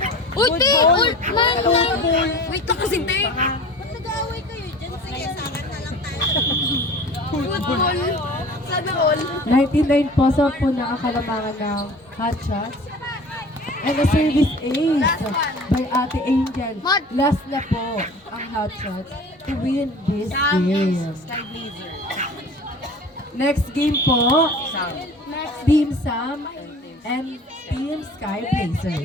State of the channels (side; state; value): both; normal; correlation 0.42